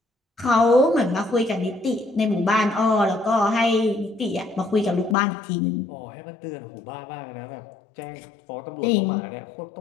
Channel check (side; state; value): right; drops out; at 5.2 s